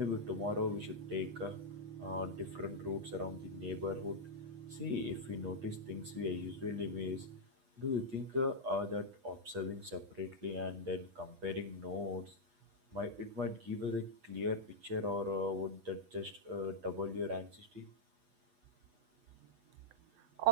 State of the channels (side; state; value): left; late; 8.2 ms